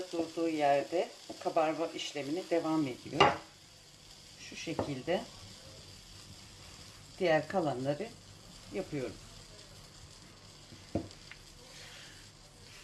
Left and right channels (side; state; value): both; identical; correlation 1.00